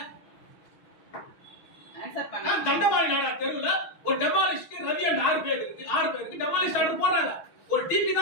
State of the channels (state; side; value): late; right; 6.1 ms